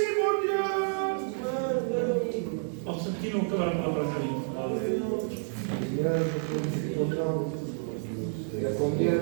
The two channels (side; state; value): left; silent; 56 dB below the other